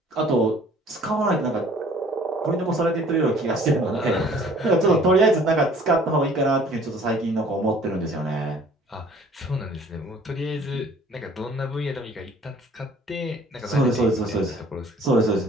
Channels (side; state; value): both; normal; correlation 0.53